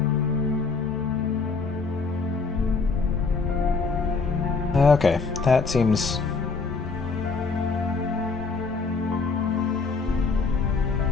Okay, that seems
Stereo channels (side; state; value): right; quieter; 4.5 dB